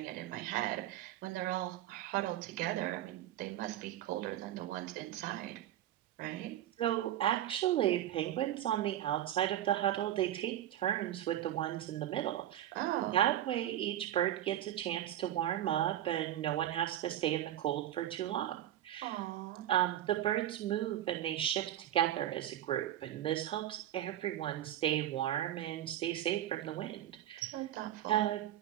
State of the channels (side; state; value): left; quieter; 12.3 dB